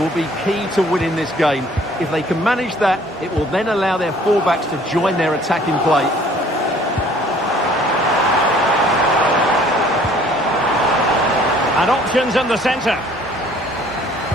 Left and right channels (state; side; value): normal; both; correlation 0.56